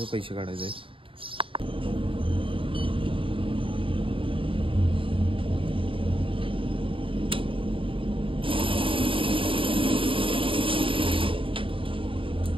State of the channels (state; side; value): late; left; 0.25 ms